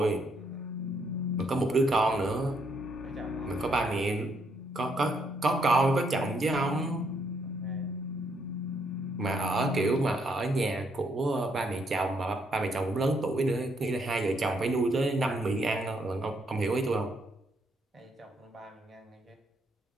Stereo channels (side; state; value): both; normal; correlation 0.73